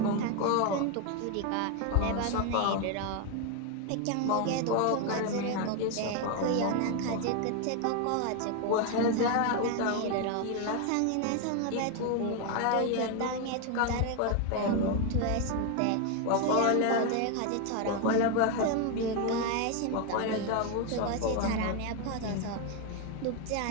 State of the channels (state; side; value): different; both; correlation 0.01